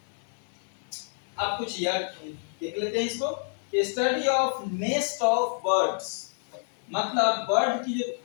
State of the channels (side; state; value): right; silent; digital silence